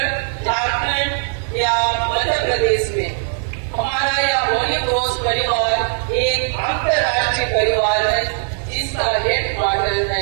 झारखंड या मध्य प्रदेश में, हमारा यह होली क्रॉस परिवार एक अंतर्राष्ट्रीय परिवार है जिसका हेडक्वार्टर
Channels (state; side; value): silent; left; 57 dB below the other